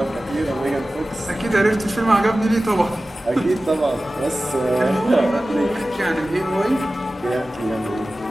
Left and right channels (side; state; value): both; normal; correlation 0.96